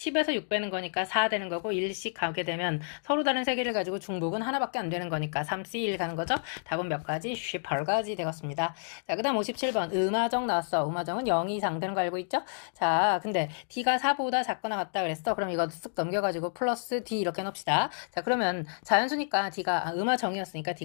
6 빼는 거니까 4 되는 거고 1씩 가게 되면 서로 다른 3개를 가지고 중복은 하나밖에 안 되는 거니까 3C1 가는 거죠? 답은 몇 가지? 18가지 되겠습니다. 자, 그 다음 57번 음화정 나왔어. 음화정은 0 이상 되는 거 알고 있죠? 자, 근데 D가 4보다 작거나 같다 그랬어. 그럼 이거 쓱 넘겨가지고 플러스 D 이렇게 넣읍시다. 자, 그러면 자연수니까 D가 음화정이었으니까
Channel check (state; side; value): silent; right; digital silence